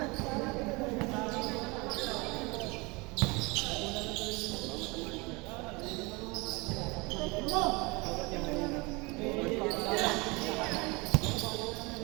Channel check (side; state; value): left; quieter; 26.3 dB